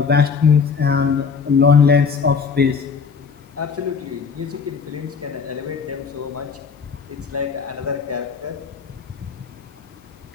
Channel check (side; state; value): right; quieter; 5.7 dB